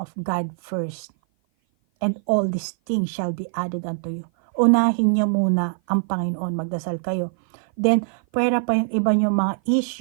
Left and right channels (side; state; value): left; silent; 56 dB below the other